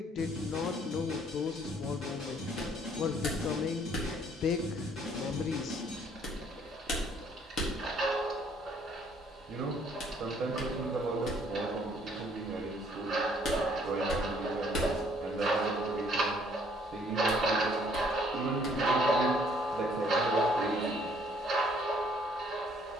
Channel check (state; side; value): normal; both; correlation 0.62